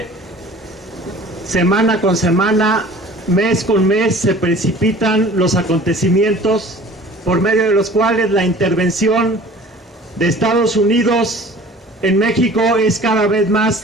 semana con semana, mes con mes, se precipitan los acontecimientos por medio de los cuales la intervención de Estados Unidos en México es cada vez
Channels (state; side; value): normal; both; correlation 0.46